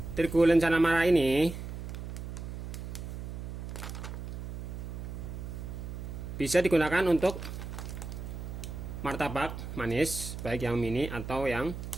Terigu lencana merah ini bisa digunakan untuk martabak manis, baik yang mini atau yang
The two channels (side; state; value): right; noise; hum, 7 dB below the sound